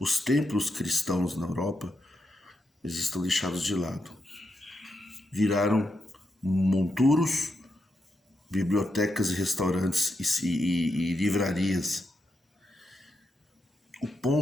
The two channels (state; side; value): normal; both; correlation 0.84